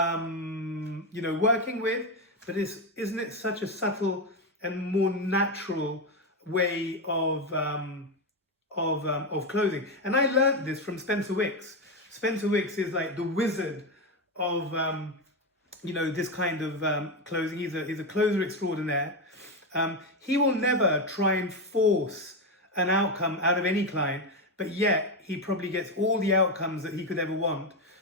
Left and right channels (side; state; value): both; normal; correlation 0.10